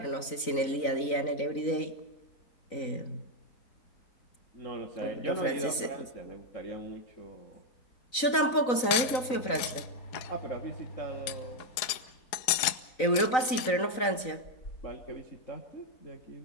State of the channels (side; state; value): right; late; 3.9 ms